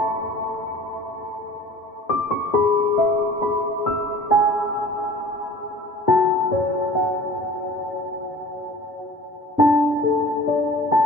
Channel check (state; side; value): normal; both; correlation 0.45